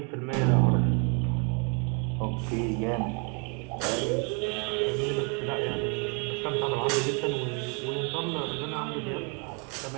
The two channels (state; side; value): quieter; left; 36.0 dB